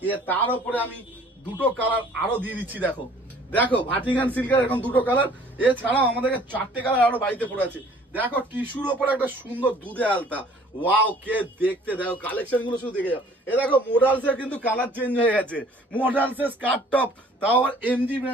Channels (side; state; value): both; normal; correlation 0.54